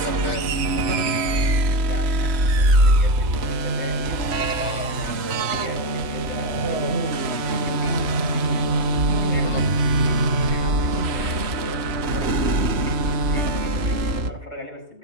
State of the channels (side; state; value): left; late; 3.0 ms